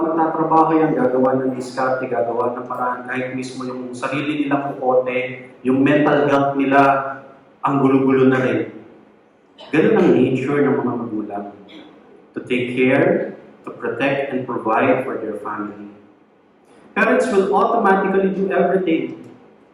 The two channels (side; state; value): both; identical; correlation 1.00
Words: yan, gagawa ng diskarte, gagawa ng paraan, kahit mismo yung sarili nilang kukote, yung mental health nila, ang gulo-gulo na rin. Ganun ang nature ng mga magulang. To take care, to protect, and provide for their family. Parents will automatically do everything.